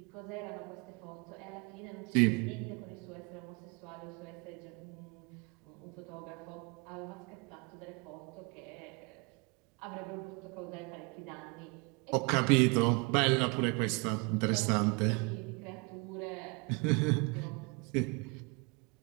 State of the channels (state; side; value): quieter; left; 30.0 dB